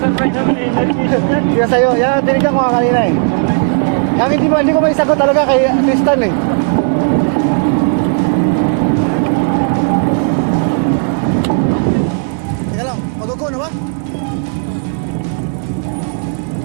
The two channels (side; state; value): left; silent; 59 dB below the other